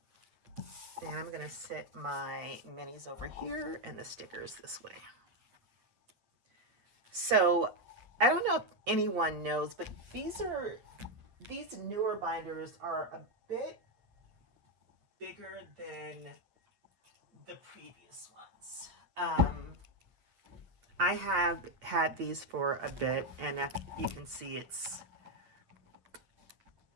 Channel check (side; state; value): left; late; 8.4 ms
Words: And I'm gonna set my minis over here and the stickers this way. So I don't know if anyone knows, but these newer binders are a bit bigger than the previous ones. I have had these for a bit, and if you can see, it's